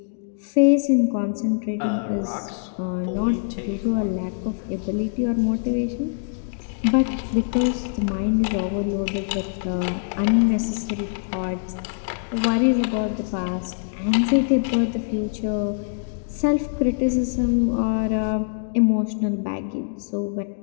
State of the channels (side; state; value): right; silent; digital silence